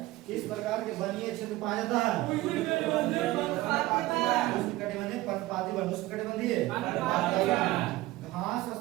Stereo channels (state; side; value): quieter; left; 17.9 dB